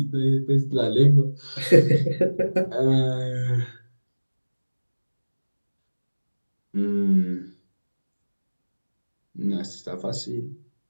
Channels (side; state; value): both; inverted; correlation -1.00